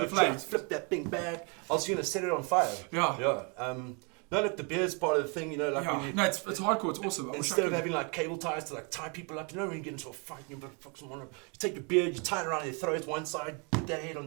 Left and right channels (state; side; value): quieter; left; 34.3 dB